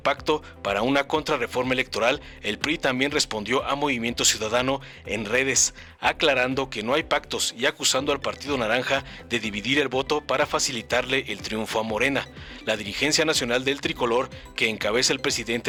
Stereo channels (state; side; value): identical; both; correlation 1.00